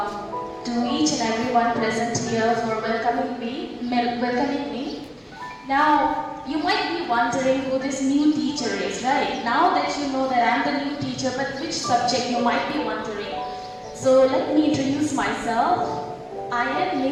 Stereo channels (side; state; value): both; identical; correlation 1.00